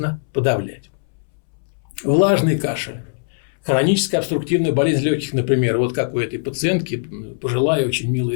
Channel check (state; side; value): silent; right; 65 dB below the other